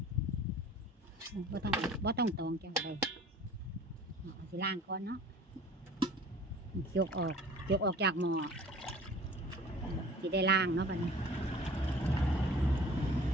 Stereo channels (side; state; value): both; normal; correlation 0.46